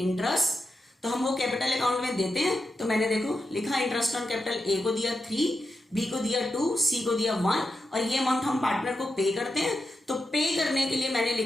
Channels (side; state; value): both; normal; correlation 0.88